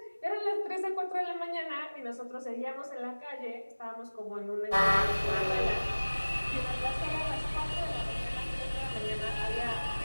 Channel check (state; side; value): inverted; both; correlation -1.00